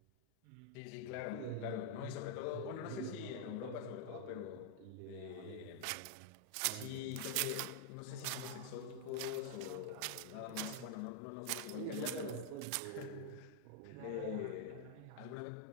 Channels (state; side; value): different; both; correlation -0.01